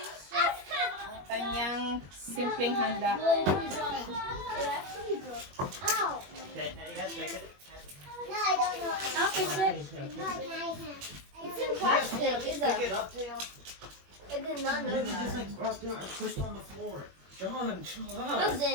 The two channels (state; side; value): late; left; 21 ms